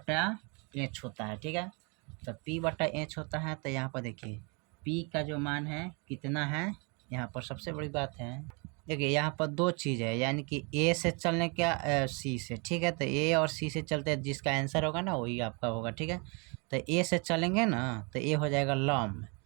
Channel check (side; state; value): left; quieter; 32.9 dB